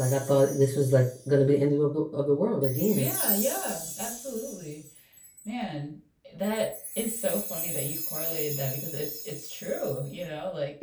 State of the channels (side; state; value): both; identical; correlation 1.00